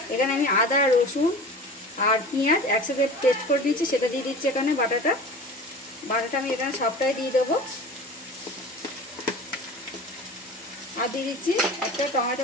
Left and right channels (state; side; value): normal; both; correlation 0.37